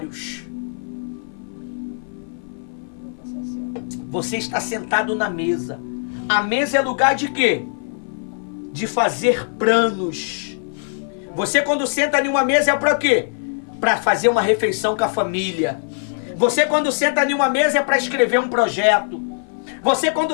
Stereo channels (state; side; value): silent; right; 57 dB below the other